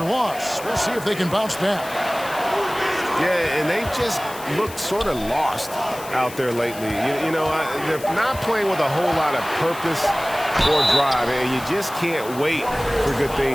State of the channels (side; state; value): left; noise; hiss, 15 dB below the sound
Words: We'll see if they can bounce back. Yeah, and they just looked sort of lost out there lately. You know, they're not playing with a whole lot of purpose or drive, and you just can't wait for good